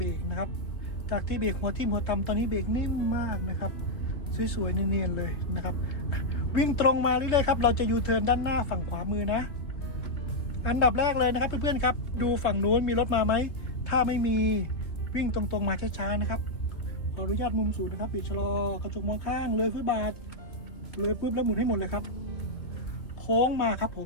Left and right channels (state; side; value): late; right; 2.9 ms